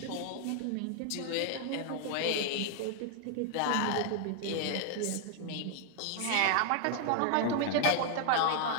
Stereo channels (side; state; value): both; different; correlation 0.00